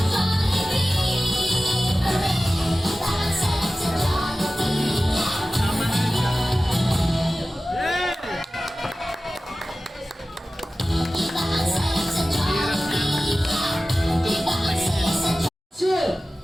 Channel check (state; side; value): normal; both; correlation 0.96